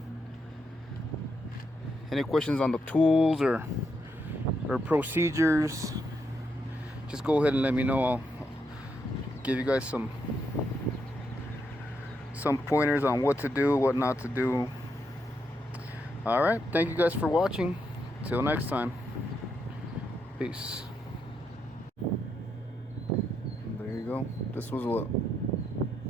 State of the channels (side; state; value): both; normal; correlation 0.80